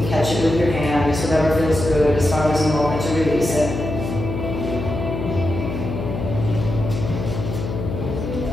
can catch it with your hand, just whatever feels good as far as a moment to release it.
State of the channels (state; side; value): noise; left; hum, 5 dB below the sound